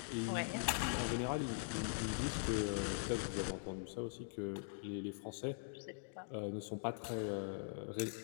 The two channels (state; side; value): silent; right; digital silence